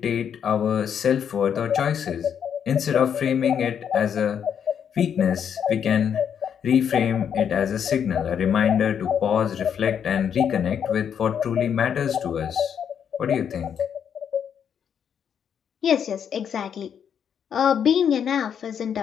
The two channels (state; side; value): quieter; right; 8.1 dB